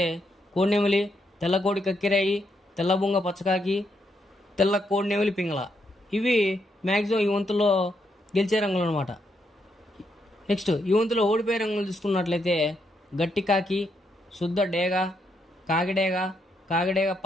కోడినెమిలి, తెల్ల కోడి కక్కిరాయి, తెల్ల బొంగ పచ్చకాకి, తెల్ల కోడినెమిలి పింగళ. ఇవి మ్యాక్సిమం ఈ వంతులో గెలిచే రంగులు అనమాట. నెక్స్ట్ ఈ వంతులో ఓడిపోయే రంగులు చూసుకున్నట్లయితే గట్టి కాకి, శుద్ధ డేగ, కాకిడేగ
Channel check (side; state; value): both; normal; correlation 0.78